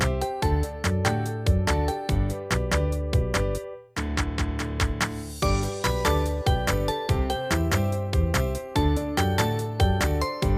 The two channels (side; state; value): both; identical; correlation 1.00